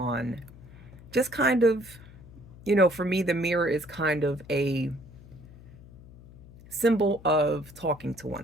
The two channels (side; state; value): left; noise; hum, 20 dB below the sound